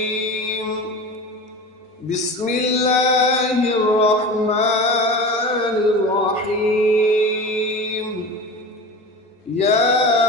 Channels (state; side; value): normal; both; correlation 0.32